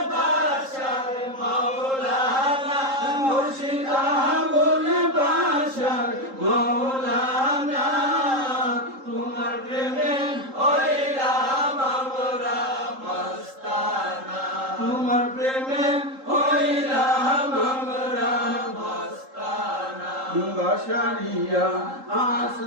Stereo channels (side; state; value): left; late; 3.8 ms